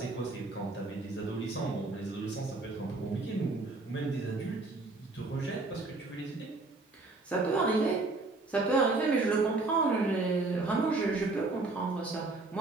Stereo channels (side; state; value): left; quieter; 3.3 dB